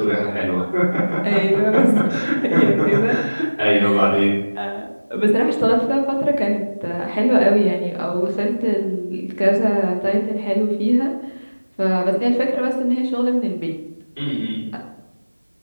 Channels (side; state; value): both; inverted; correlation -1.00